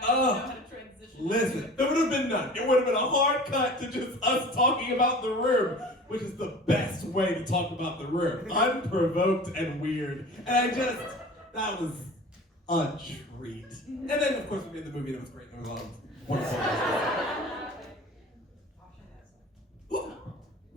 I don't know how to transition. Listen, there would have been none. It would have been a hard cut to just us talking about the room, which is the best way to talk about the room. Unprovoked and weird. And that was a treat. And then, of course, we made the movie that was great. There was a lot of wonderful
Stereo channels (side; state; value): both; normal; correlation 0.40